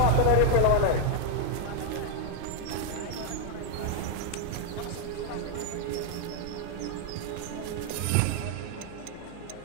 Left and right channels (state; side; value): different; both; correlation 0.00